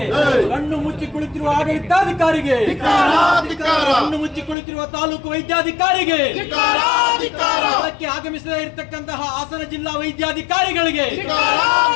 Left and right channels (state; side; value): drops out; right; at 4.5 s